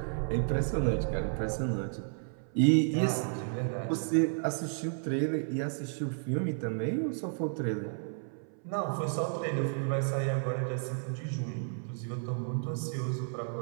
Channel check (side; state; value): left; silent; 56 dB below the other